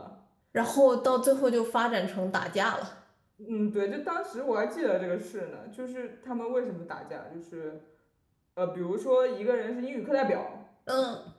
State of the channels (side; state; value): both; identical; correlation 1.00